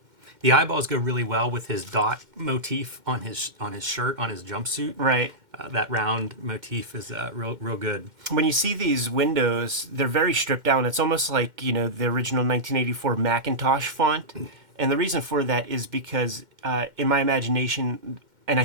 The eyeballs go really well with his dot motif on his shirt, on his jumpsuit. Right. That round motif is real good. When you see these windows, they're very stripped down. It's almost like, the original 1984 Macintosh font. And the reason for that is because in my imagination, and I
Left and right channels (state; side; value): late; left; 2.1 ms